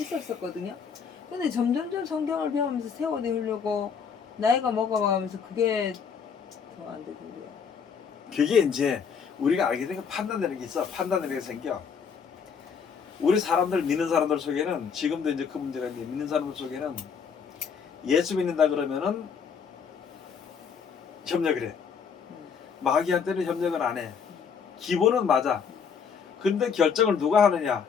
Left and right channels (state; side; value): quieter; right; 6.5 dB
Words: 근데 점점점 성경을 배우면서 세워내려고 나이가 먹어가면서 그게 더 안 되던데요. 그게 이제 우리가 알게 되는 판단되는 게 있어. 판단되는 게 생겨. 우리 사람들 믿는 사람들 속에는 지금도 이제 그 문제가 있는데 믿는 사람들 속에는 예수 믿는다 그러면은 협력을 해. 마귀한테는 협력을 안 해. 기본은 맞아. 근데 결정을 누가 하느냐?